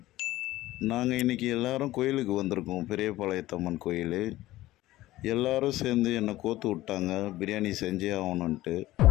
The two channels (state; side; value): quieter; right; 16.5 dB